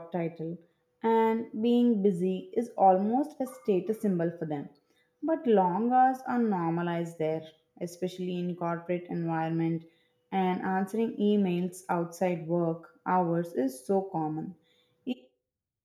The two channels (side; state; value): both; identical; correlation 1.00